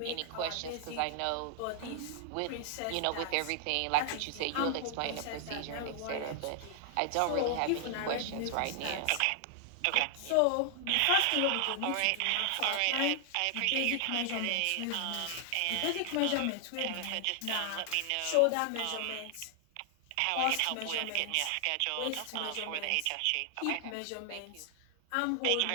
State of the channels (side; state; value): both; different; correlation 0.00